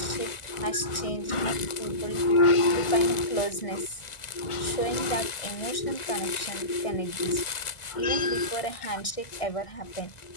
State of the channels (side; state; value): right; late; 1.5 ms